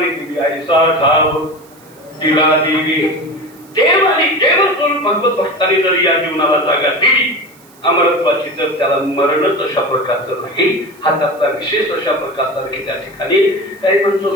दिली. ऐसा ठाव तिला दिली देव आणि देव स्वरूप भगवत भक्तांनी जर या जीवनाला जागा दिली अमरत्वाची, तर त्याला मरणच अशा प्रकारचं नाही. हा त्याचा विशेष अशा प्रकारचा नाही. त्या ठिकाणी काही म्हणतो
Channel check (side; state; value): right; noise; hiss, 27 dB below the sound